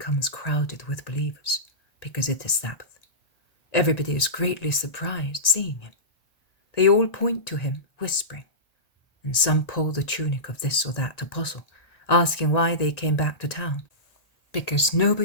crowded with believers, because it is Sabbath. Everybody is greatly surprised seeing him. They all point to him, whispering, and some pull the tunic of this or that apostle, asking why they came back to town, because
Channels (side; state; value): right; late; 1.9 ms